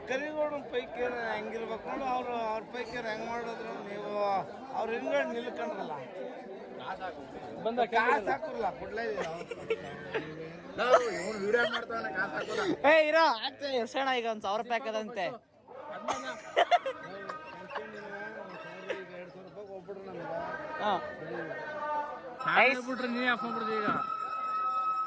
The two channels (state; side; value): identical; both; correlation 1.00